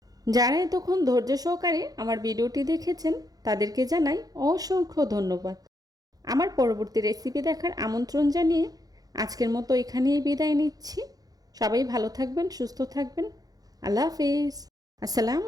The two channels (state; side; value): late; left; 0.18 ms